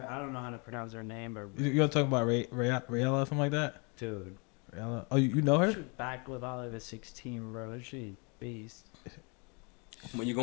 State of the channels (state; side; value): quieter; right; 33.1 dB